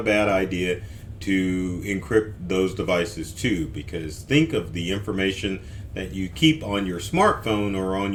bad idea to encrypt those devices too, because think of the information that you keep on your smartphone or on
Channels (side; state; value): both; identical; correlation 1.00